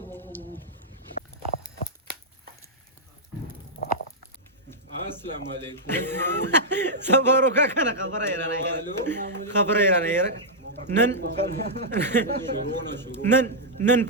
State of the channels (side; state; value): both; normal; correlation -0.08